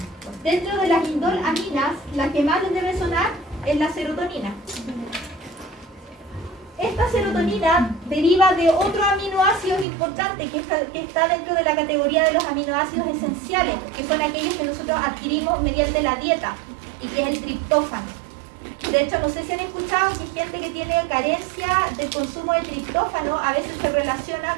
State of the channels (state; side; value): drops out; left; at 9.9 s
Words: Dentro de las indolaminas, la que más les debe sonar es la serotonina. Esta serotonina deriva de otro aminoácido importante que está dentro de la categoría de los aminoácidos esenciales, que son aquellos que nosotros adquirimos mediante la dieta, y que es el triptófano. De hecho, no sé si han escuchado que gente que tiene carencia del consumo de triptófano a veces se relaciona